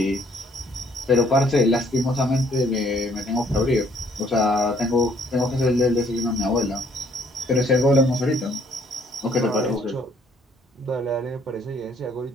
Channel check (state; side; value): normal; both; correlation 0.63